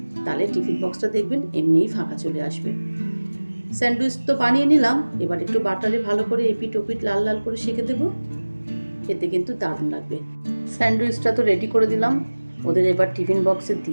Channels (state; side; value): inverted; both; correlation -1.00